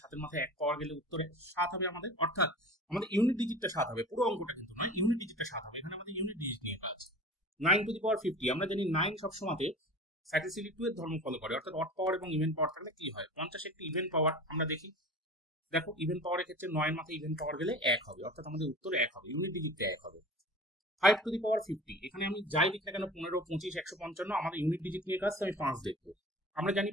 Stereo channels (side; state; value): both; normal; correlation 0.38